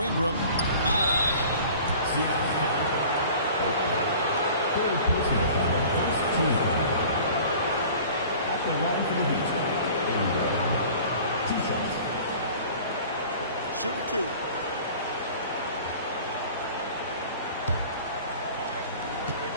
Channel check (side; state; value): both; inverted; correlation -0.45